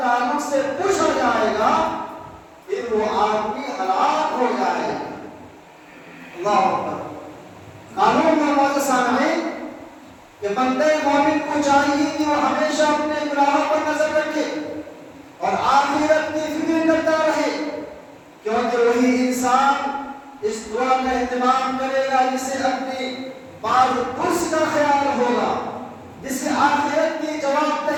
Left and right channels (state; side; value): identical; both; correlation 1.00